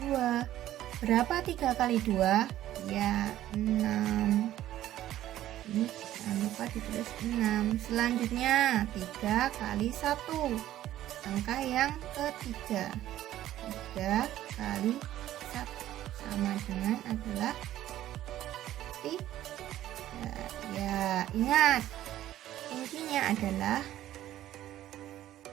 Berapa 3 kali 2? Ya, 6. Ini jangan lupa ditulis 6. Selanjutnya 3 kali 1. Angka yang ketiga, 3 kali 1 sama dengan adalah 3. Ya, ingat, kuncinya adalah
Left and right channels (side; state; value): left; quieter; 13.3 dB